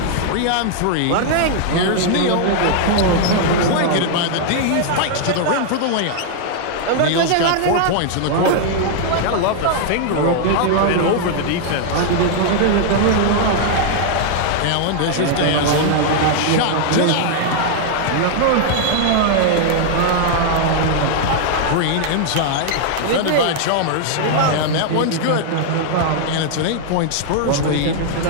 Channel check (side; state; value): both; different; correlation -0.01